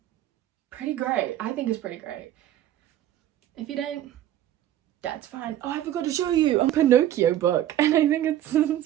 pretty great. I think it's pretty great. If you don't, that's fine. Oh, I forgot to show you a Pinocchio book, and I think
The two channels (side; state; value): left; quieter; 12.3 dB